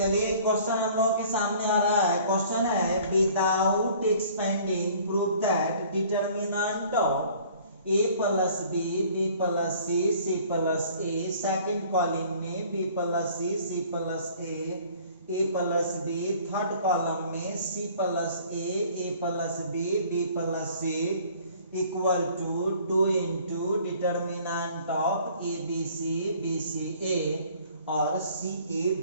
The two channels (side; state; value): both; inverted; correlation -0.53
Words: क्वेश्चन हम लोगों के सामने आ रहा है। क्वेश्चन है without expanding prove that determinant of a plus B plus C plus A. Second column में b plus C plus A plus B. Third column में C plus A plus B plus C equal to 2 into determinant of A B C A और C A